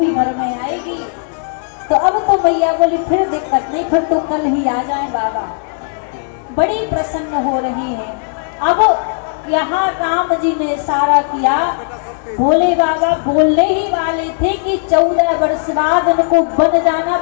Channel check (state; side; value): silent; right; 65 dB below the other